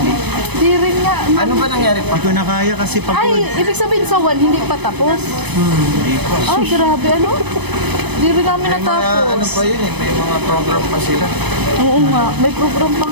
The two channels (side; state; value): left; late; 0.99 ms